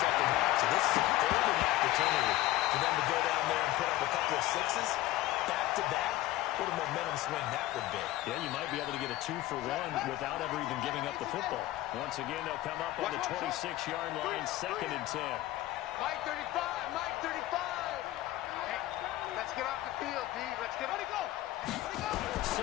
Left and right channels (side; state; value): right; quieter; 16.2 dB